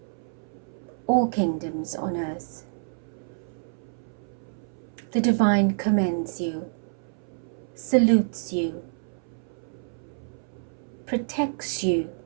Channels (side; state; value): left; silent; 59 dB below the other